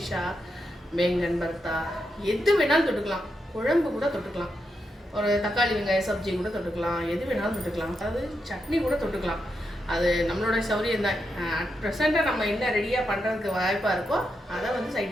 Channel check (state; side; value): normal; both; correlation 0.84